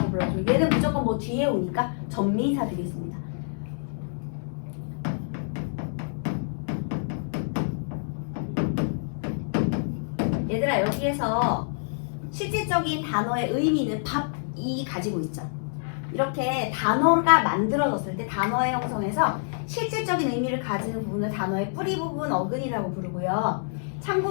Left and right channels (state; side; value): silent; right; digital silence